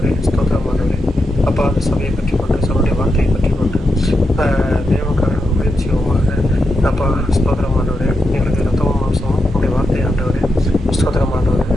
ஸ்தோத்திரமானவரே, அப்பா அந்த சபையை பற்றி கொண்டு சபையுடைய வார்த்தையை பற்றி கொண்டு தேவனுக்காக ஊழியம் செய்வோமாக. அப்பா ஸ்தோத்திரமானவரே, எங்களுக்கு ரத்தமும் மாம்சமும் உடைய வார்த்தை ஆண்டவரே ஸ்தோத்திரமானவரே,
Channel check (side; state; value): both; normal; correlation 0.86